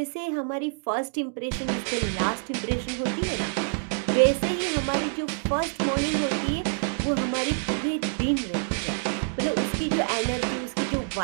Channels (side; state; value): left; silent; digital silence